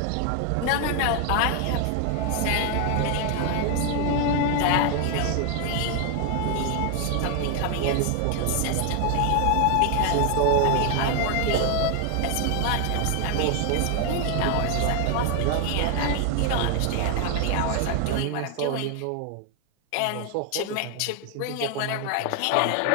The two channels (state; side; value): different; both; correlation 0.00